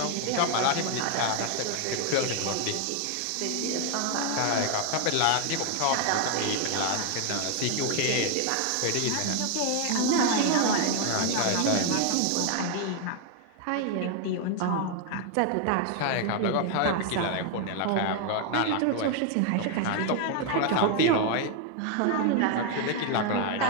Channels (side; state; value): both; different; correlation 0.00